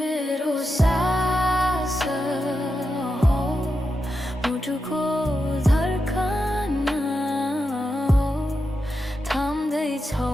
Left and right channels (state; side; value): normal; both; correlation 0.88